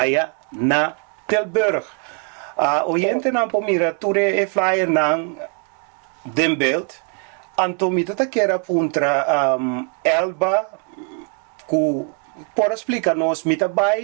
na Tilburg. Oriente não pomira ture e flyer não den beeld. Então me tata quer apuntar Elba que por explicar-nos me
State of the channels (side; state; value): left; quieter; 39.7 dB